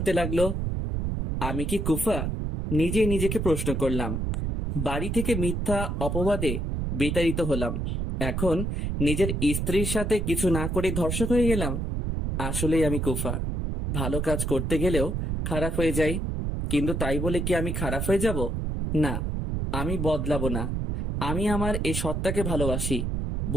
লাগলো। আমি কি কুফা? নিজেই নিজেকে প্রশ্ন করলাম। বাড়ি থেকে মিথ্যা অপবাদে বিতাড়িত হলাম, এখন নিজের স্ত্রীর সাথে কিছু না করে ধর্ষক হয়ে গেলাম। আসলেই আমি কুফা। ভালো কাজ করতে গেলেও খারাপ হয়ে যাই, কিন্তু তাই বলে কি আমি খারাপ হয়ে যাব? না, আমি বদলাবো না। আমি আমার এই সত্তাকে ভালোবাসি।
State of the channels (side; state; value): right; noise; rumble, 1 dB below the sound